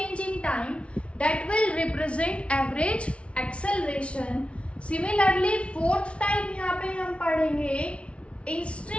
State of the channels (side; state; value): right; late; 0.061 ms